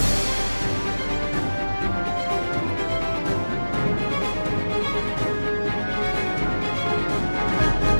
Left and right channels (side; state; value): both; inverted; correlation -1.00